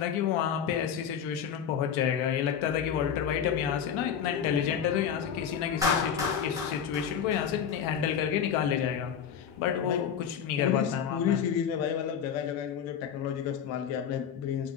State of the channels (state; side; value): quieter; right; 8.1 dB